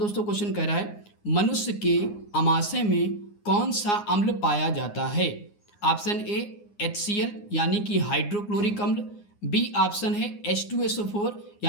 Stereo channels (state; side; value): late; right; 9.7 ms